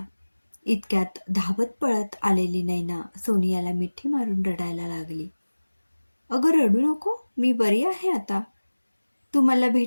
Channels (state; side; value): inverted; both; correlation -1.00